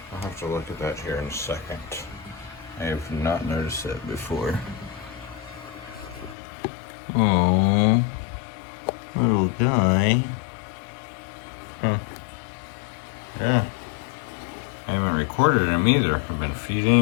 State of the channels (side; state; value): right; drops out; at 6.4 s